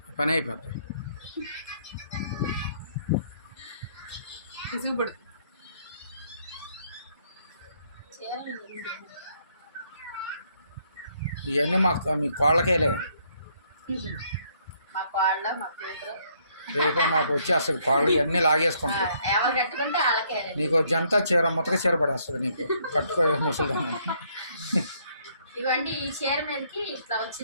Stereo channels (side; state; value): both; inverted; correlation -0.68